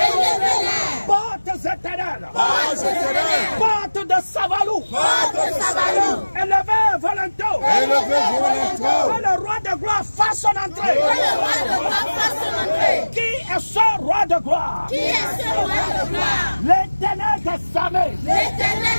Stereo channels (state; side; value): inverted; both; correlation -1.00